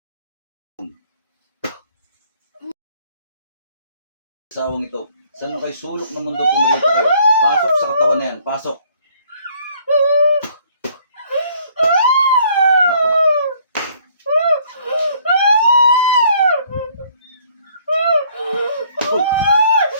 asawang ito. Saan makaisulok ng mundo, pumarito kayo. Pasok sa katawan na yan, pasok.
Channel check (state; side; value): inverted; both; correlation -0.61